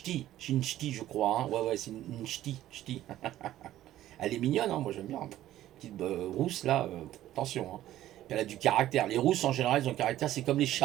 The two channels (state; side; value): quieter; left; 13.5 dB